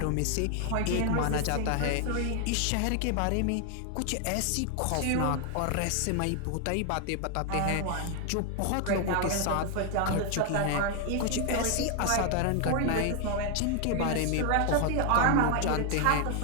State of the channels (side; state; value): both; different; correlation 0.00